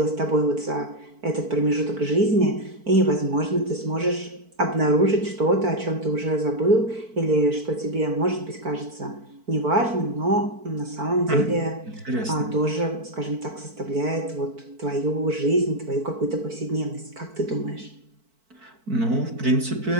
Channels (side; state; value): left; late; 4.5 ms